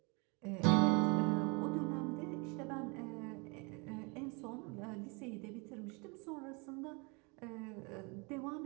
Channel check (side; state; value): left; quieter; 30.4 dB